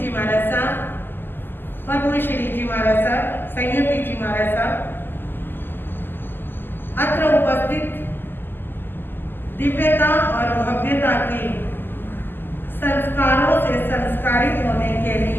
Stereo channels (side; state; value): right; late; 0.10 ms